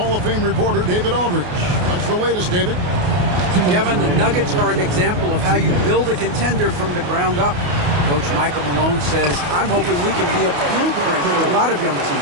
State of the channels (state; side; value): late; left; 28 ms